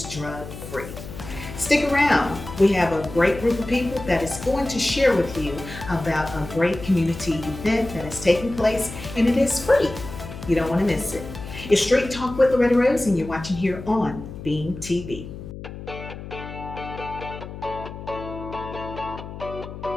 drug free. Stick around. We have a great group of people that is going to share with you about a great community event that is taking place, and it is free. You don't want to miss it. It's Street Talk with Loretta Rose, and you're watching here on Beam TV.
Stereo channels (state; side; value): noise; left; hum, 11 dB below the sound